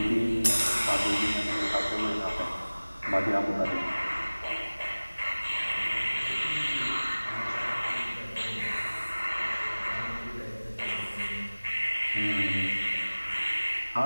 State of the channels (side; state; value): both; inverted; correlation -1.00